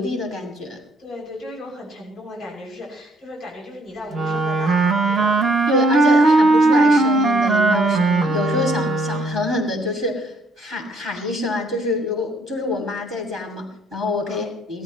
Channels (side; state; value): both; normal; correlation 0.66